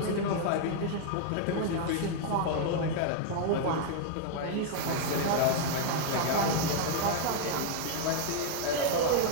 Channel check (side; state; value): both; different; correlation 0.00